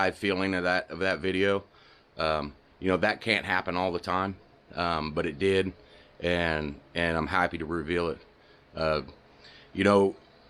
feeling of that video. That can't happen all the time, but it did, and I'm happy to reveal it.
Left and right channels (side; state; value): both; identical; correlation 1.00